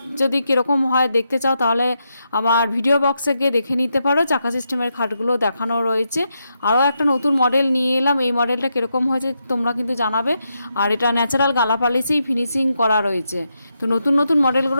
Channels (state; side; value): inverted; both; correlation -0.83